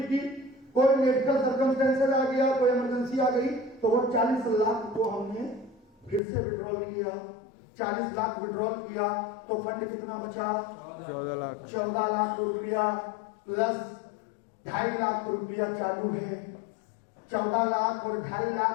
की, कोई मेडिकल सर्कमस्टेंसेस आ गया, कोई इमरजेंसी आ गई, तो वो 40 लाख को हमने फिर से विड्रॉल किया। 40 लाख विड्रॉल किया, तो फंड कितना बचा? 14 लाख। 14 लाख रुपया प्लस 2.5 लाख रुपया चालू है। 14 लाख और 2.5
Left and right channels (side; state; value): right; drops out; at 6.2 s